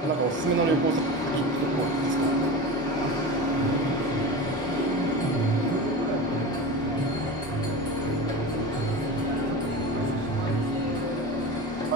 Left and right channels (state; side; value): normal; both; correlation 0.28